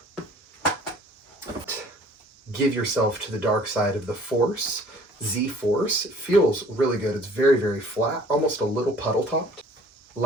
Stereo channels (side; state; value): both; normal; correlation 0.53